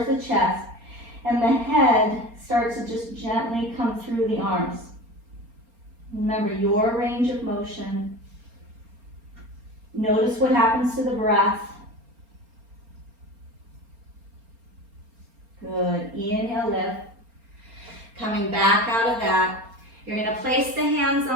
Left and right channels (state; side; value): late; left; 4.3 ms